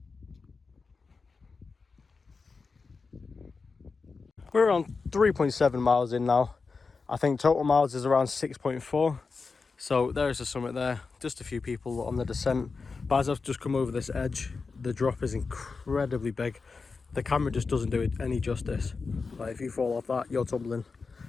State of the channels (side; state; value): right; quieter; 4.5 dB